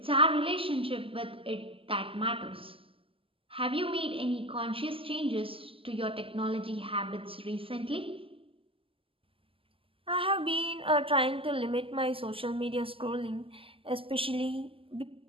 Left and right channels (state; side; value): late; left; 0.26 ms